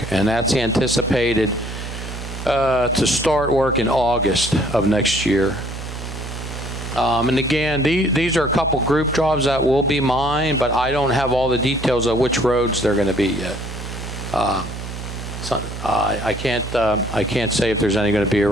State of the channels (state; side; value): noise; right; hum, 9 dB below the sound